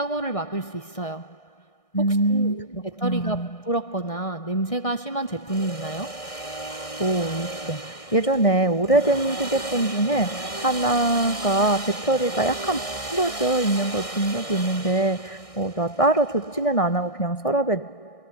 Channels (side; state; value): right; late; 1.6 ms